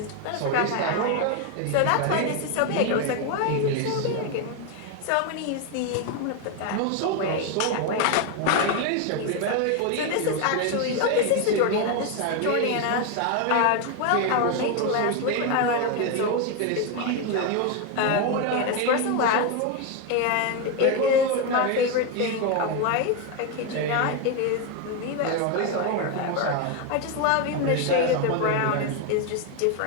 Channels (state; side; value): different; both; correlation 0.02